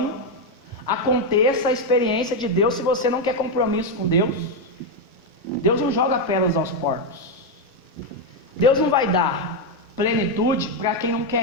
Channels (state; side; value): normal; both; correlation 0.04